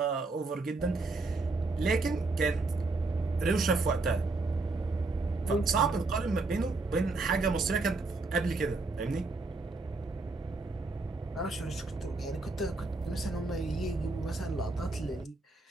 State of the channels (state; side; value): quieter; left; 3.4 dB